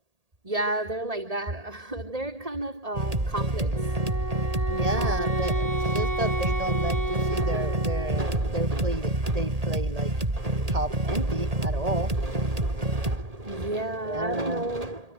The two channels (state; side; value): late; left; 1.8 ms